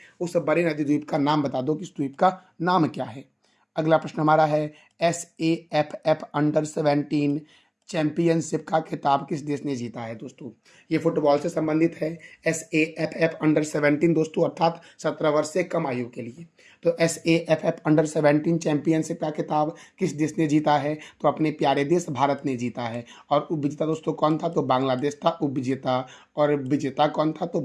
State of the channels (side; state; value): both; identical; correlation 1.00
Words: उस बड़े नदी द्वीप का नाम बता दो कि इस द्वीप का नाम क्या है। अगला प्रश्न हमारा है, SAFF अंडर-17 चैंपियनशिप का खिताब किस देश ने जीता है? दोस्तों ये फुटबॉल से संबंधित है। SAFF अंडर-17 दोस्तों अर्थात 17 वर्ष से कम आयु के लिए। तो SAFF अंडर-17 चैंपियनशिप का खिताब किस देश ने जीता है? तो अपने प्यारे देश भारत ने जीता है। और उपविजेता दोस्तों कौन था? तो बांग्लादेश था उपविजेता। और विजेता कौन था? तो